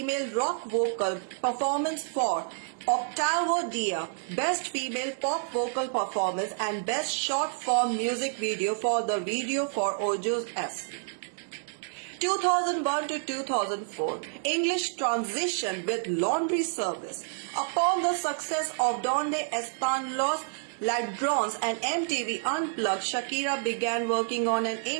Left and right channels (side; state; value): left; silent; digital silence